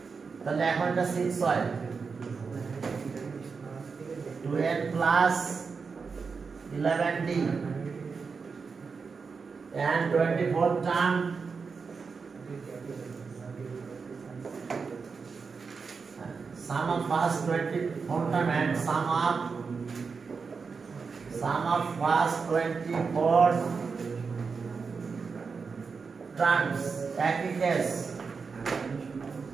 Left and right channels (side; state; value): left; quieter; 5.1 dB